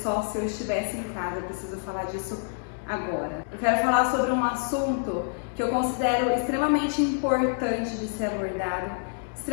se eu estivesse em casa. Eu preciso falar disso agora. Eu quero falar sobre um assunto que eu considero extremamente importante de ser abordado,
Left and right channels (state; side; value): silent; right; 60 dB below the other